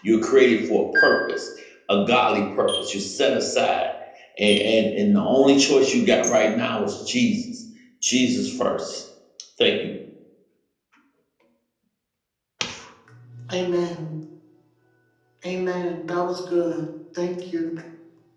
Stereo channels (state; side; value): identical; both; correlation 1.00